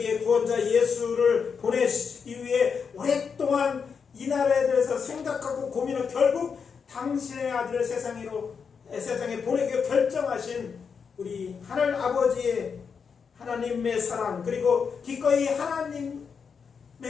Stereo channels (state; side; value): quieter; right; 6.1 dB